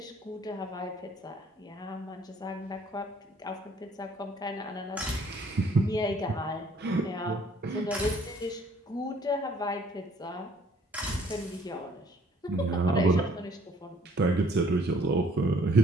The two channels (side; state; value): both; normal; correlation 0.60